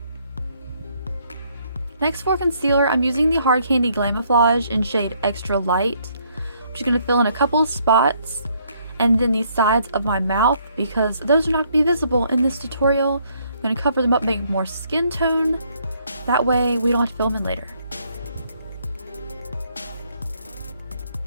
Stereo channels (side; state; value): both; inverted; correlation -0.69